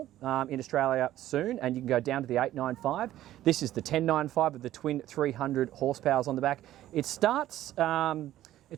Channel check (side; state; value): left; quieter; 13.6 dB